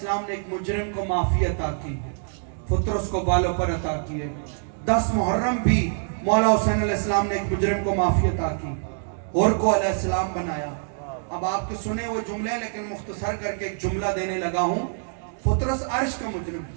نے ایک مجرم کو معافی عطا کی, پترس کو بالوں پر عطا کیے. 10 محرم بھی مولا حسین علیہ السلام نے ایک مجرم کو معافی عطا کی, اور کو علیہ السلام بنایا. اب آپ کے سنے ہوئے جملے, لیکن مختصر کر کے ایک جملہ دینے لگا ہوں. پترس عرش کا مجرم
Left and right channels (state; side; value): silent; left; digital silence